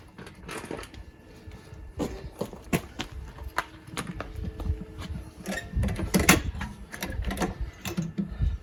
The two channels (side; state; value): both; identical; correlation 1.00